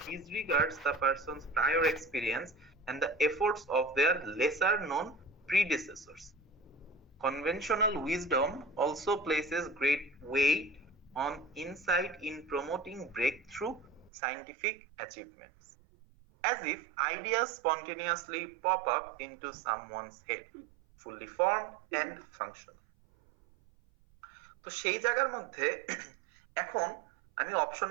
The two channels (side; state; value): left; drops out; at 14.1 s